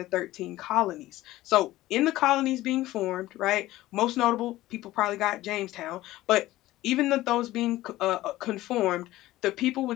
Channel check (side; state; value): right; quieter; 16.4 dB